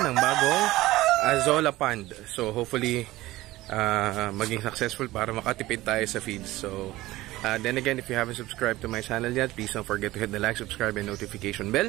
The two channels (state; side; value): quieter; left; 17.6 dB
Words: bagong Azolla pond. So hopefully maging successful para makatipid tayo sa feeds. So then again, if you haven't subscribed to my channel yet, please don't forget to hit the like, subscribe, and notification bell